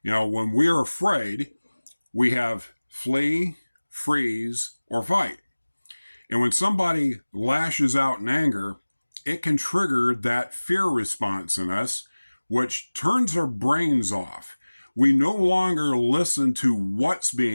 When we're afraid, we have flee, freeze, or fight. And when somebody lashes out in anger, it can trigger that fear response in us, which turns our brains off. We no longer listen to what's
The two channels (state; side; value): inverted; both; correlation -1.00